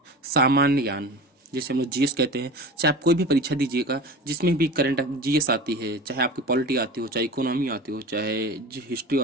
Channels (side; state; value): both; normal; correlation 0.34